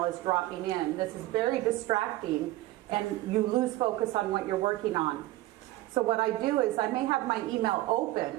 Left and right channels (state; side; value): quieter; left; 16.9 dB